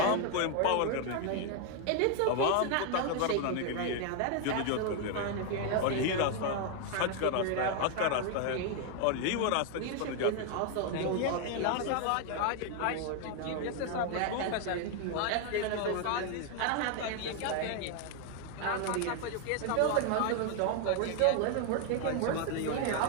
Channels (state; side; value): different; both; correlation 0.00